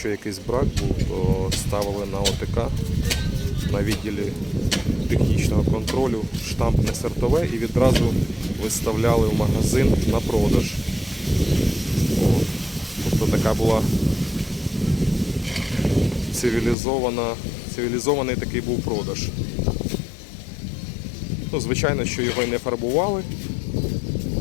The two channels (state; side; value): drops out; right; at 16.8 s